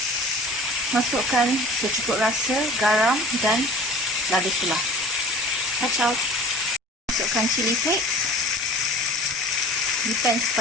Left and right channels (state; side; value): normal; both; correlation 0.43